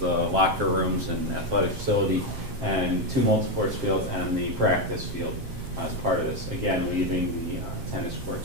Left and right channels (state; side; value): late; left; 7.5 ms